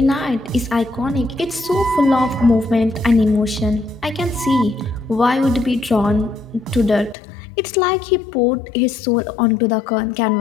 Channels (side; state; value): right; drops out; at 7.2 s